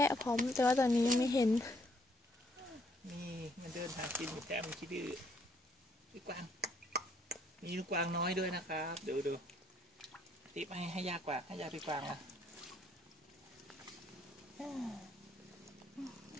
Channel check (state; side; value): normal; both; correlation 0.68